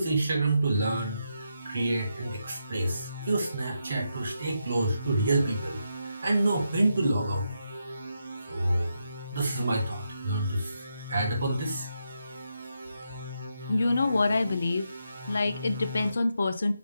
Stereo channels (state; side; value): inverted; both; correlation -0.83